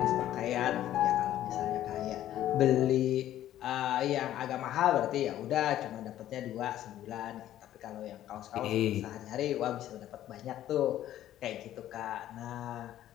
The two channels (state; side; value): quieter; right; 12.6 dB